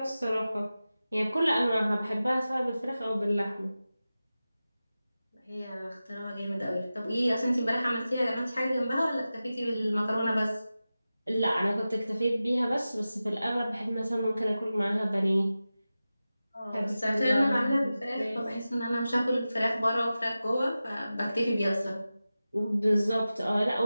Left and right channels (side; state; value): both; inverted; correlation -0.95